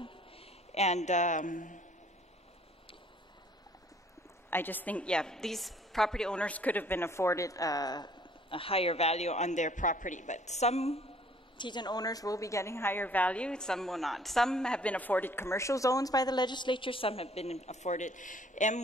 and I just think, these property owners could have been afforded a higher value on their property, but some Tizen owners will be getting higher value, some will not. Some have been afforded commercial zones by the legislature, some have been afforded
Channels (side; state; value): both; normal; correlation 0.58